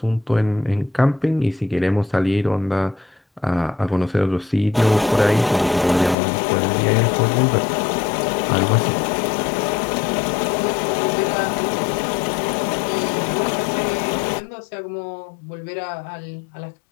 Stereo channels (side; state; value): right; drops out; at 6.2 s